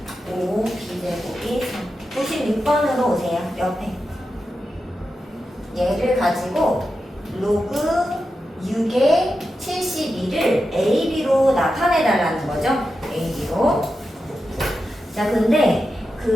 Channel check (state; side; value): normal; both; correlation 0.89